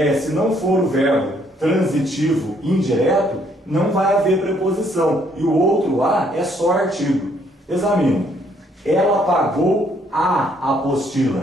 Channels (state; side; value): normal; both; correlation 0.67